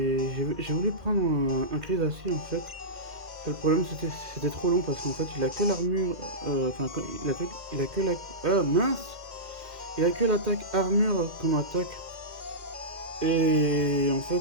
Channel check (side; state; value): left; late; 2.1 ms